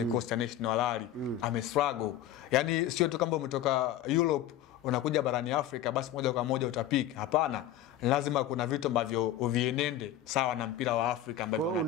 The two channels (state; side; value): quieter; right; 11.2 dB